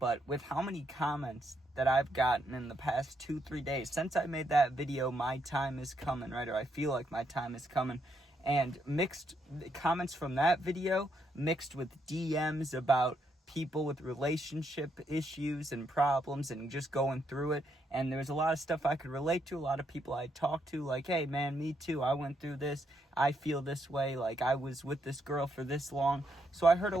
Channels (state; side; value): normal; both; correlation 0.77